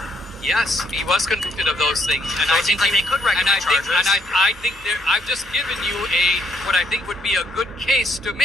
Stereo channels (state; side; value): normal; both; correlation 0.70